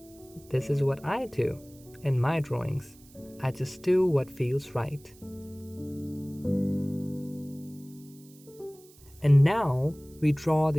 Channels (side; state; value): right; noise; hiss, 25 dB below the sound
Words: This is what I do in my drawings. I just do what feels right. And now we draw